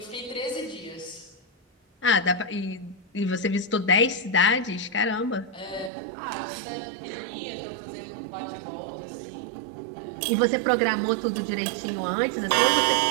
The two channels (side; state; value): left; drops out; at 5.9 s